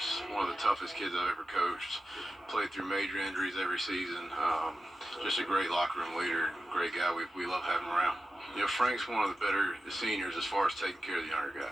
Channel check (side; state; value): both; normal; correlation 0.93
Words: One of the toughest kids I've ever coached. Played through major injuries every season. Just a great locker room leader. Great guy. We love having him around. Frank's one of the better seniors as far as taking care of the younger